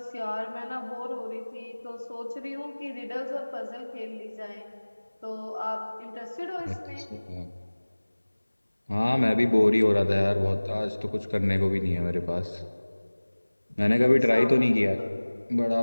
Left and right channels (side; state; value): both; inverted; correlation -1.00